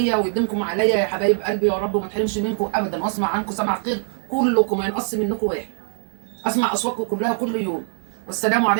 ويديمكم عليا يا حبايب قلبي يا رب، وما تحرمش منكم ابدا، واسمع عنكم سمع خير كلكم، ما ينقص منكم واحد. اسمع اصواتكم كلها كل يوم. والسلام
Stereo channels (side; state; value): left; silent; 64 dB below the other